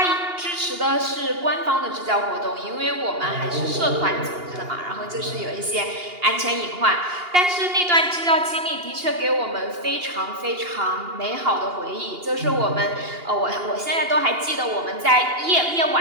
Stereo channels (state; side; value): late; left; 2.8 ms